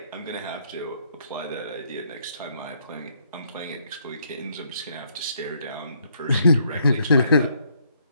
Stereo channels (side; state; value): both; inverted; correlation -0.70